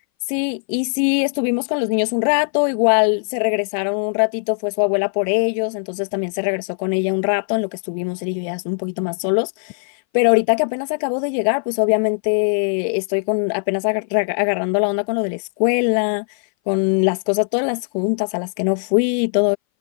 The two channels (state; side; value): silent; right; 60 dB below the other